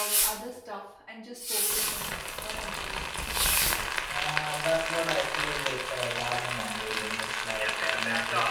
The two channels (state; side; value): identical; both; correlation 1.00